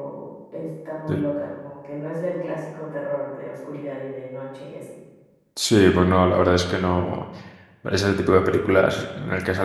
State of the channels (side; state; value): both; identical; correlation 1.00